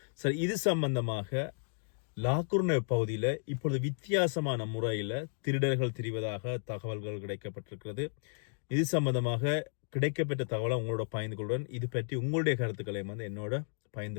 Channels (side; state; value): right; silent; digital silence